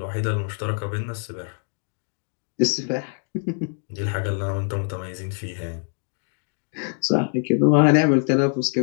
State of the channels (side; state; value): right; silent; 62 dB below the other